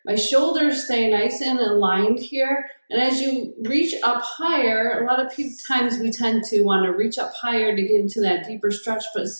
my shoulders stay nice and aligned here. And as you reach up higher, a lot of times we tend to want to reach up higher to get into that deeper stretch, but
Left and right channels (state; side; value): inverted; both; correlation -1.00